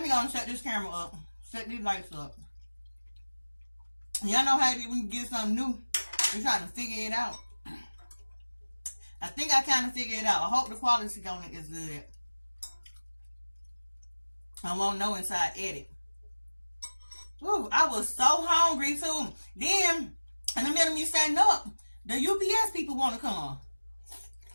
me go and set this camera up, set these lights up. Y'all know how it is when you get something new, you're trying to figure it out. I think I kind of figured it out. I hope the quality on it is good. I won't know inside edit. Ooh, I was so hungry too. Then, in the middle of me setting up, the UPS people want to come.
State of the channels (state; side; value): inverted; both; correlation -1.00